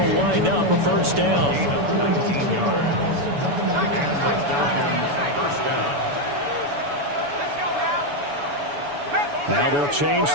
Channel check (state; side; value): late; left; 7.0 ms